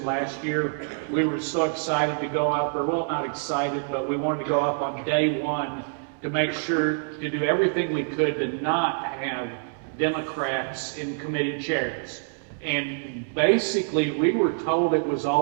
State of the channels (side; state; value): left; silent; 61 dB below the other